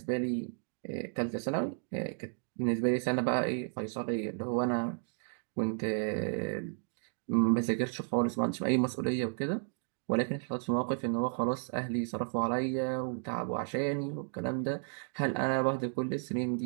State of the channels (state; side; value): silent; left; 56 dB below the other